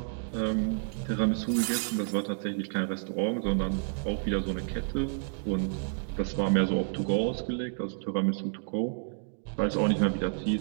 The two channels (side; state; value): left; silent; digital silence